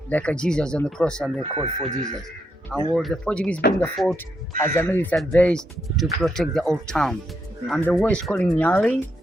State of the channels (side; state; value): both; normal; correlation 0.79